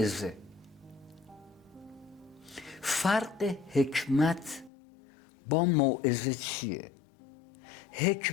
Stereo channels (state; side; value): drops out; right; at 4.7 s